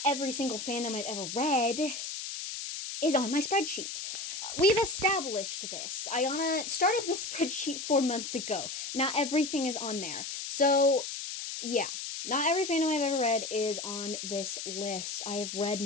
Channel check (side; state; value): left; noise; hiss, 6 dB below the sound